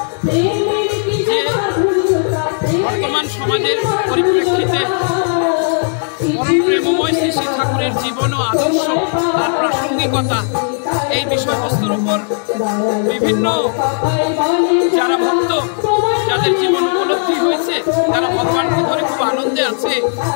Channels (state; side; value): silent; right; 65 dB below the other